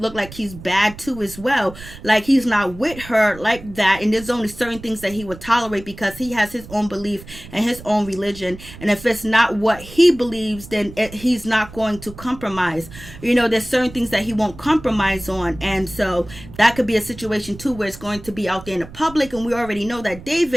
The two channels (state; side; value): noise; right; rumble, 16 dB below the sound